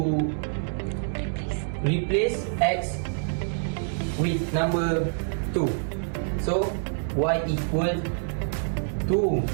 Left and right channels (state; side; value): silent; left; digital silence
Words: replace x with number 2. So y equal 2